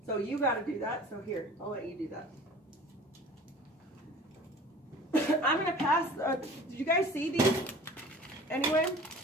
So you gotta do that, so here, I'll let you do that. I'm gonna pass, did you guys see these? Anyway,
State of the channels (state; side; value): normal; both; correlation 0.43